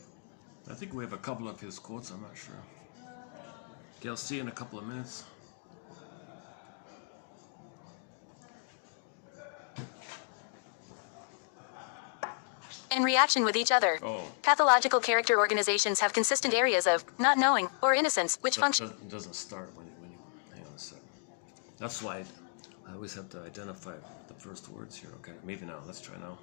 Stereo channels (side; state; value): right; silent; digital silence